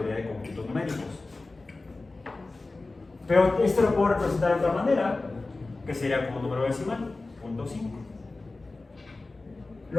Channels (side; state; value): right; quieter; 3.3 dB